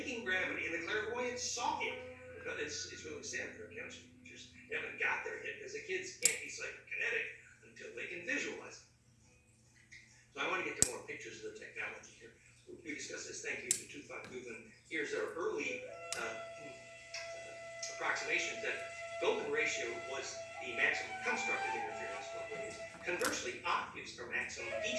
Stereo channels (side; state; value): both; identical; correlation 1.00